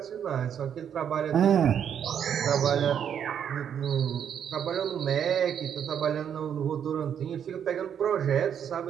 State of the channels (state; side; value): quieter; left; 8.6 dB